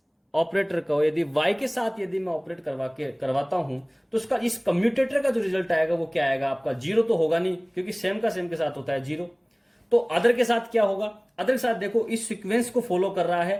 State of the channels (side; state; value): both; identical; correlation 1.00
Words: ऑपरेटर को यदि वाई के साथ यदि मैं ऑपरेट करवाता हूं तो उसका इस कम्यूटेटर का जो रिजल्ट आएगा वो क्या आएगा आपका, 0 तो होगा नहीं क्योंकि सेम का सेम के साथ होता है 0। तो अदर के साथ क्या होगा, अदर के साथ देखो इस सीक्वेंस को फॉलो कर रहा है